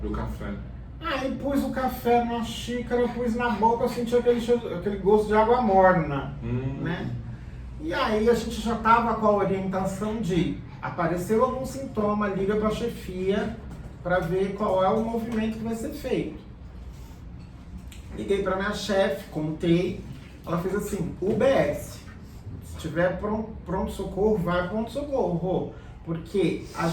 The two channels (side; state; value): both; identical; correlation 1.00